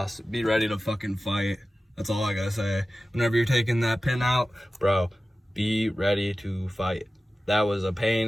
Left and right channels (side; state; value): both; normal; correlation 0.95